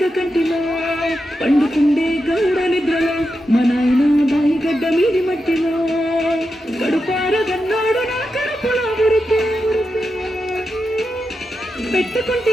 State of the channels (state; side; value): normal; both; correlation 0.88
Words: కంటిలో పండుకుండే గౌడ నిద్రలో మా నాయన బాయి గడ్డ మీది మట్టిలో గడుపార గన్నాడు నా కడుపులో